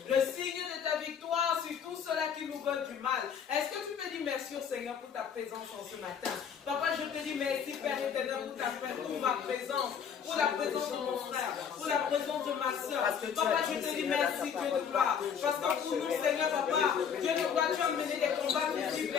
Le signe de ta victoire sur tous ceux-là qui nous veulent du mal. Est-ce que tu peux dire merci au Seigneur pour ta présence en ce matin? Papa, je te dis merci Père éternel pour ma présence. Pour la présence de mon frère. Pour la présence de ma soeur. Papa, je te dis merci Dieu de gloire. Parce que pour nous Seigneur Papa, Dieu de gloire, tu as mené des combats visibles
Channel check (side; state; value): right; quieter; 7.4 dB